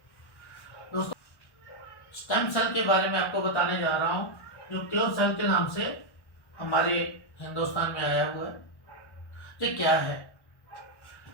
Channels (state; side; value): late; right; 1.1 ms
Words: दोस्तों स्टेम सेल के बारे में आपको बताने जा रहा हूँ, जो क्योर सेल के नाम से हमारे हिंदुस्तान में आया हुआ है। ये क्या है?